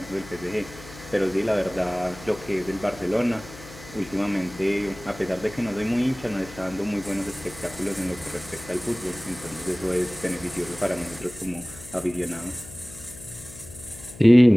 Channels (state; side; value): noise; left; hum, 17 dB below the sound